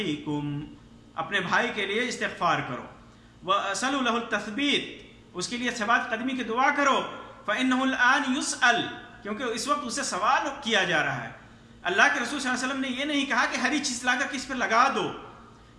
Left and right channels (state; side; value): identical; both; correlation 1.00